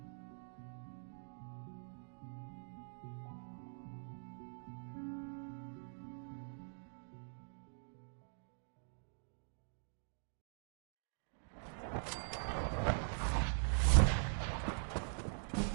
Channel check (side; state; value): left; silent; digital silence